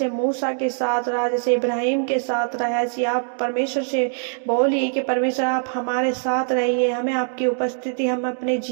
मूसा के साथ रहा, जैसे इब्राहिम के साथ रहा, ऐसी आप परमेश्वर से बोलिए कि परमेश्वर आप हमारे साथ रहिए। हमें आपकी उपस्थिति हम अपने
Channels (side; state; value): left; silent; digital silence